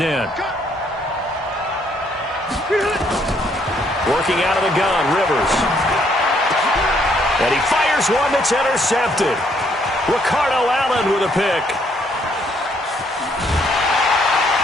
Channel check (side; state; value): both; normal; correlation 0.69